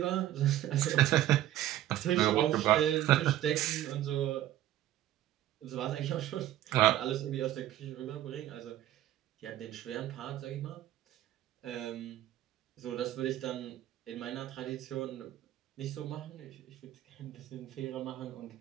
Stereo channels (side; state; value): left; quieter; 13.4 dB